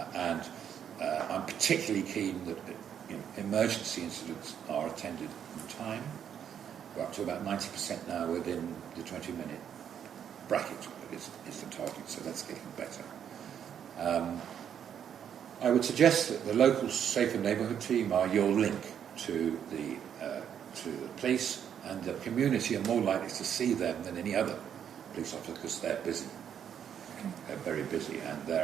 I'm particularly keen that emergency incidents are attended in time. We're up to about 90% now within the 20-minute bracket is the target, so that's getting better. I would suggest that the local Safer Neighbourhood team are your link to the police, and the community are more likely to see them than any other police officer because they're busy. They're very busy and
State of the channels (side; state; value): left; quieter; 8.8 dB